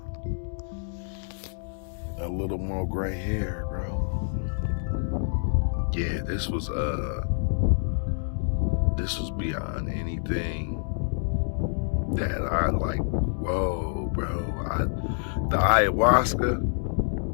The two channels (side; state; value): right; silent; digital silence